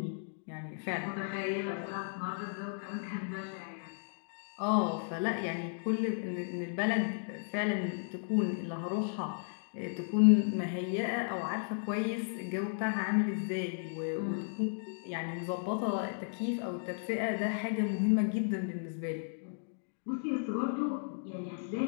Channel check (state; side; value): silent; right; digital silence